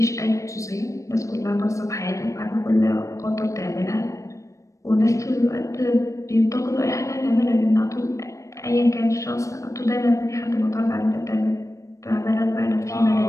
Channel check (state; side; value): late; right; 0.15 ms